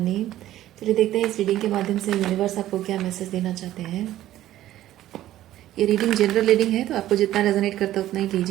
चलिए देखते हैं इस रीडिंग के माध्यम से यूनिवर्स आपको क्या मैसेज देना चाहते हैं। ये रीडिंग जनरल रीडिंग है, तो आपको जितना रेजोनेट करता है उतना ही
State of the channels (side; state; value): left; quieter; 13.7 dB